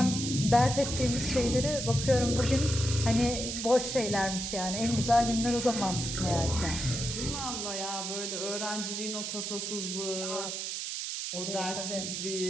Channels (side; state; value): right; noise; hiss, 4 dB below the sound